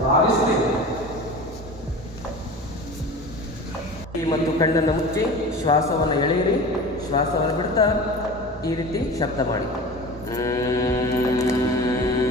ಭಾವಿಸಬೇಕು. ಮತ್ತು ಕಣ್ಣನ್ನು ಮುಚ್ಚಿ ಶ್ವಾಸವನ್ನು ಎಳೆಯಿರಿ. ಶ್ವಾಸವನ್ನು ಬಿಡ್ತಾ ಈ ರೀತಿ ಶಬ್ದ ಮಾಡಿ.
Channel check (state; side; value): normal; both; correlation 0.35